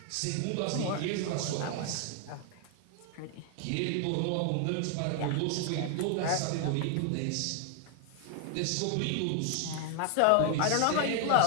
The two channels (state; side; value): different; both; correlation 0.00